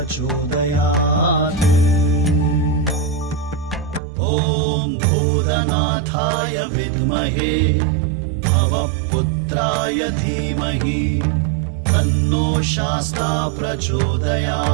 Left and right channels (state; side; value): drops out; left; at 4.0 s